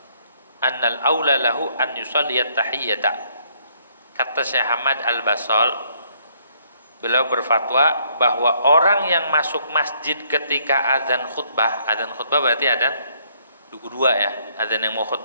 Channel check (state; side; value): inverted; both; correlation -0.67